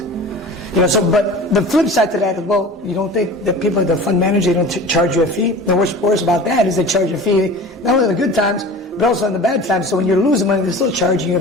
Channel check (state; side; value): normal; both; correlation 0.38